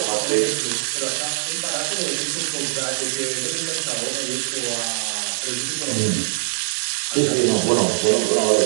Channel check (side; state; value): left; silent; 64 dB below the other